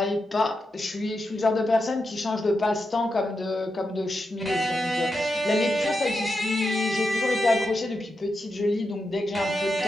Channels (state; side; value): normal; both; correlation 0.87